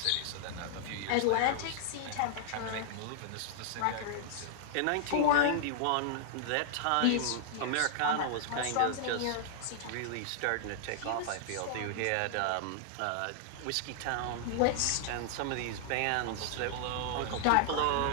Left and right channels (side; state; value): both; different; correlation -0.01